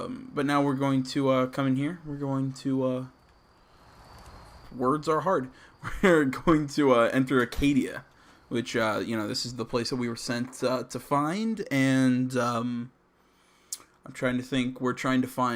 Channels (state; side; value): identical; both; correlation 1.00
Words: now we're going to come in here. We're going to words are hard. We're going to enter Acadia, which, you know, this is the place that we were sent to find, and I'm trying to think. We're trying to